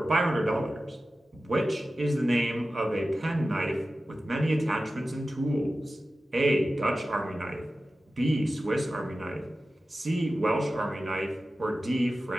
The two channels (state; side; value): normal; both; correlation 0.95